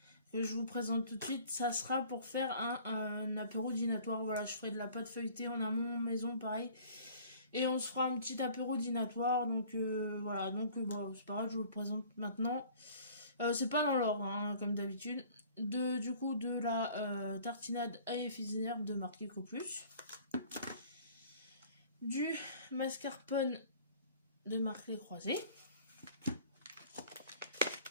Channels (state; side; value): inverted; both; correlation -0.50